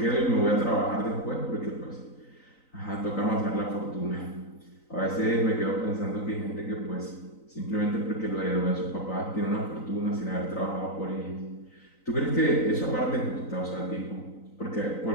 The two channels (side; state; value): right; late; 3.9 ms